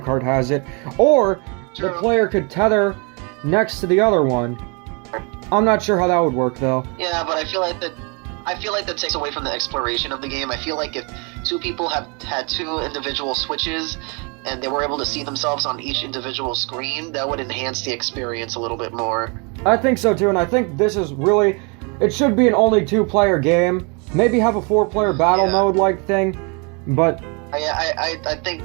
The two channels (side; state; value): left; quieter; 33.0 dB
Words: has it. Or the player could tether next to the other one. I'm not sure how that would work though. Yeah, but I feel like that takes away from the exploration of the game. I feel like if two people had two individual Switches and they were able to see themselves on each individual screen, that would enhance the experience a little bit more. I think so too, and I think this is really, it should be an only two-player game. Maybe have a four-player battle mode-like thing, but I think